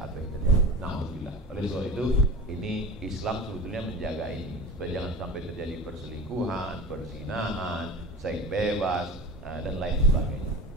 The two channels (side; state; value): both; normal; correlation 0.35